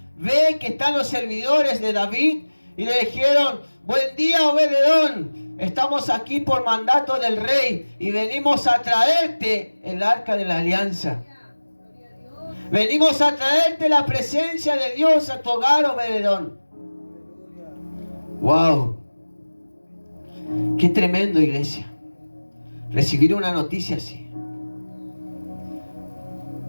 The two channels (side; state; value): both; inverted; correlation -1.00